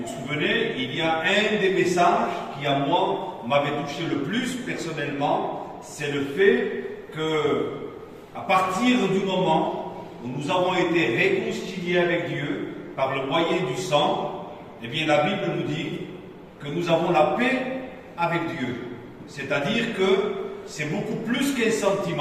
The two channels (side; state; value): both; identical; correlation 1.00